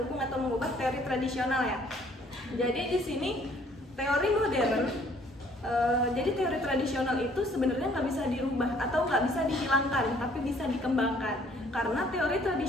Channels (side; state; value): both; normal; correlation 0.60